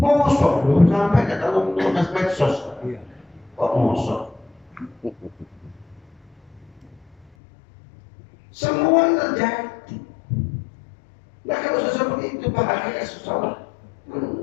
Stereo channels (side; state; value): right; drops out; at 7.3 s